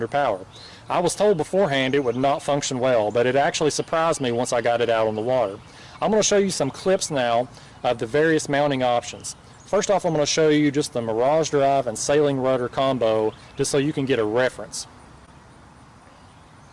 power. I was told beforehand it would not function well, but it actually surprised me once I got it out on the water. I'm going to show you some clips now of the various mounting options. First off, I'm going to show you just the Mirage Drive and sailing rudder combo, just so you can get a reference.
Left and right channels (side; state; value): both; identical; correlation 1.00